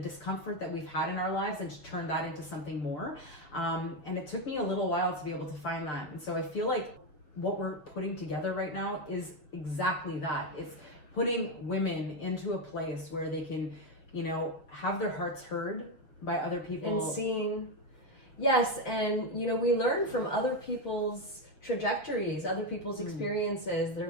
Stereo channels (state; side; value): late; right; 6.8 ms